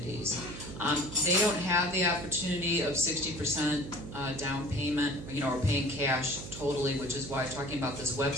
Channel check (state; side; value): noise; right; hum, 11 dB below the sound